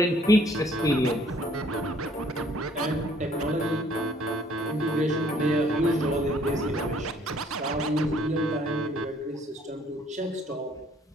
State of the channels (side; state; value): both; normal; correlation 0.60